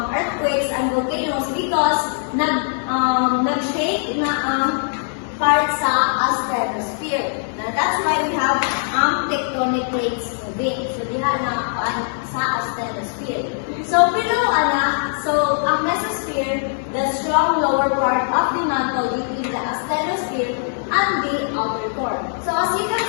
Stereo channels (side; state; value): right; silent; 65 dB below the other